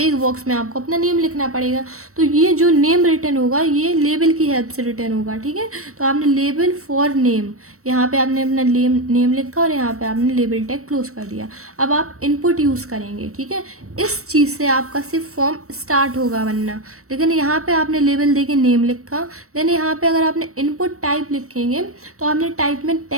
एक बॉक्स में आपको अपना नेम लिखना पड़ेगा। तो ये जो नेम रिटर्न होगा ये लेबल की हेल्प से रिटर्न होगा, ठीक है। तो आपने लेबल फॉर नेम, यहाँ पे आपने अपना नेम लिखा और यहाँ पे आपने लेबल टैग क्लोज कर दिया। अब आप इनपुट यूज़ करेंगे, ठीक है। इस चीज़ से आपका सिर्फ फॉर्म स्टार्ट होगा बनना, लेकिन यहाँ पे आपने लेबल दे के नेम लिखा। देन यहाँ पे अगर आपने इनपुट टाइप लिखेंगे तो आपने टाइप में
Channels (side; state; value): left; late; 0.64 ms